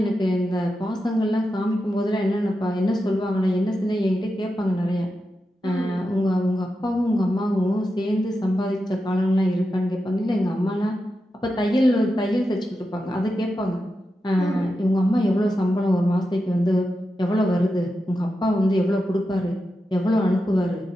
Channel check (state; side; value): normal; both; correlation 0.89